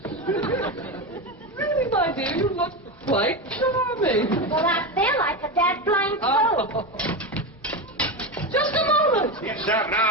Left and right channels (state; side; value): normal; both; correlation 0.17